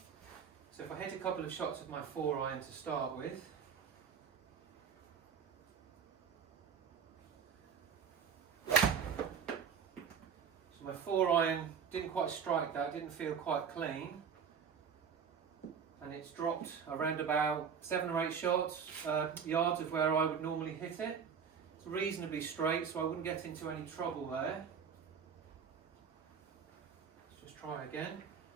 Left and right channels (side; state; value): left; quieter; 6.9 dB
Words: So if I hit a couple of shots of my 4 iron to start with. So my 4 iron didn't quite strike that, didn't feel quite clean, and it's dropped around about 7 or 8 yards of where I would normally hit it. It's reasonably straight, so I wouldn't get into any trouble there. Let's just try again.